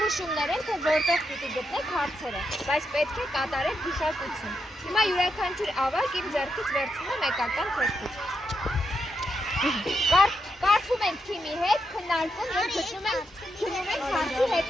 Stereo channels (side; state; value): both; normal; correlation 0.83